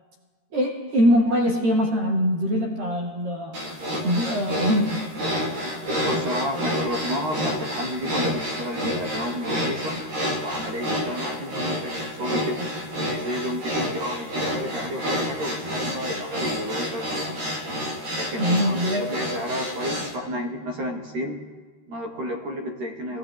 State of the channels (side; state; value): left; late; 13 ms